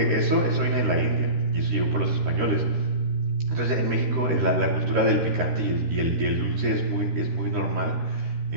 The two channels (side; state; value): left; late; 13 ms